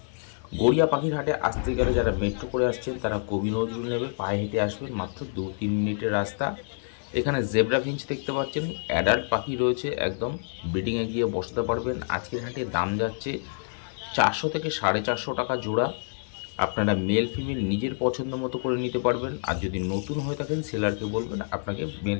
গড়িয়া পাখির হাটে আসতে গেলে যারা মেট্রো করে আসছেন তারা কবি নজরুল নেবে, পায়ে হেঁটে আসবেন, মাত্র 2-3 মিনিটের রাস্তা। এখানে জেব্রা ফিঞ্চ দেখতে পাচ্ছেন, অ্যাডাল্ট পাখি রয়েছে, একদম ব্রিডিংয়ে গিয়ে বসাতে পারবেন। আজকের হাটে দাম যাচ্ছে 400 থেকে 450 টাকা জোড়া। আপনারা মেল ফিমেল নিজের পছন্দ মতো করে নিতে পারবেন। আর যদি নতুন হয়ে থাকেন সেলারকে বলবেন আপনাকে মেল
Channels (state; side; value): silent; right; 58 dB below the other